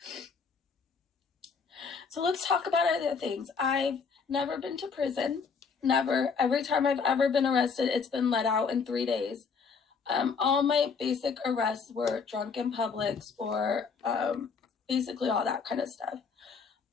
So let's talk about other things. I've never been to prison. Never. Every time I've ever been arrested, it's been let out in 3 days. All my basic arrests were drunk in Publix or basically all that kind of stuff.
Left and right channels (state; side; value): quieter; right; 5.5 dB